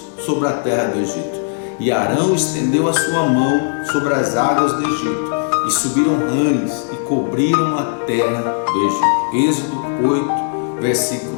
sobre a terra do Egito. E Arão estendeu a sua mão sobre as águas do Egito, e subiram rãs, e cobriram a terra do Egito. Êxodo 8,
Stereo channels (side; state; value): right; silent; 66 dB below the other